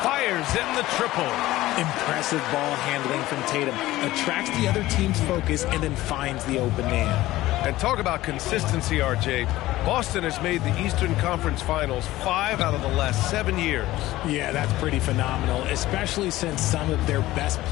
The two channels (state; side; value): quieter; right; 16.7 dB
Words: Fires in the triple. Impressive ball handling from Tatum. Attracts the other team's focus and then finds the open man. And talk about consistency, RJ. Boston has made the Eastern Conference Finals 5 out of the last 7 years. Yeah, that's pretty phenomenal, especially since some of their best